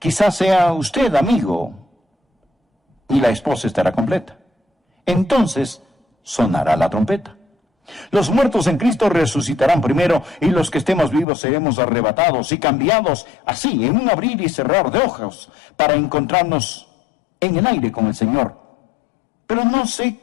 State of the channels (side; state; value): right; drops out; at 11.2 s